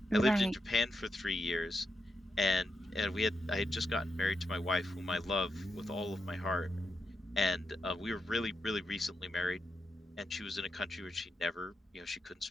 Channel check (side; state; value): both; normal; correlation 0.85